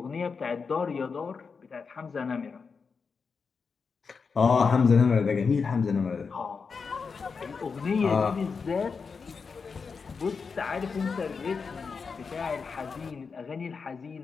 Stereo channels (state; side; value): quieter; right; 5.3 dB